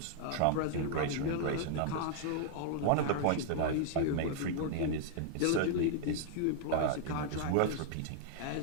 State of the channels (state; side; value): different; both; correlation -0.01